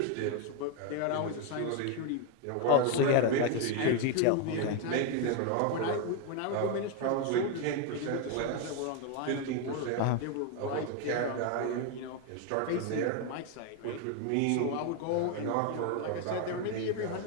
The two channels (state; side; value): different; both; correlation 0.01